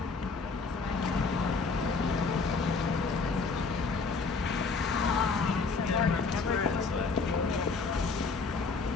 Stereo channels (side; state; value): right; quieter; 4.5 dB